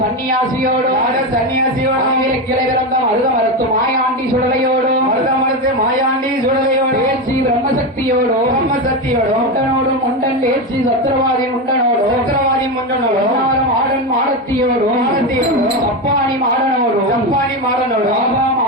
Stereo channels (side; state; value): both; normal; correlation 0.15